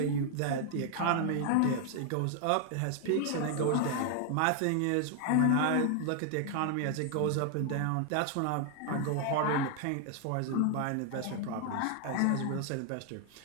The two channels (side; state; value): both; different; correlation 0.00